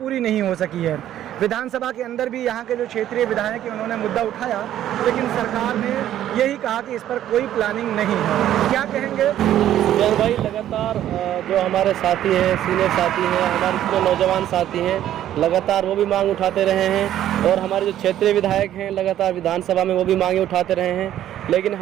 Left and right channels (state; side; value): quieter; left; 11.9 dB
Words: नहीं हो सकी है। विधानसभा के अंदर भी यहाँ के जो क्षेत्रीय विधायक हैं उन्होंने मुद्दा उठाया, लेकिन सरकार ने यही कहा कि इस पर कोई प्लानिंग नहीं है। क्या कहेंगे जय भाई? लगातार जो हमारे साथी हैं, सीनियर साथी हैं, हमारे जो नौजवान साथी हैं, लगातार वो भी मांग उठाते रहे हैं। और हमारे जो क्षेत्रीय विधायक हैं लगातार विधानसभा में वो भी मांगे उठाते रहे हैं, लेकिन